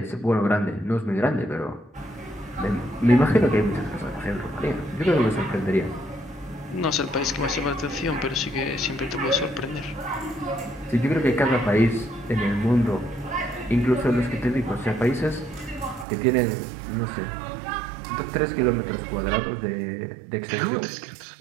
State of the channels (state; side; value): drops out; left; at 16.1 s